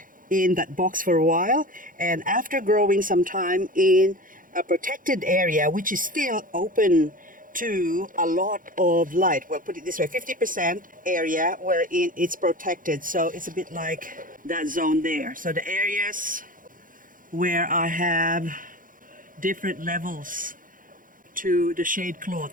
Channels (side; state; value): left; late; 0.40 ms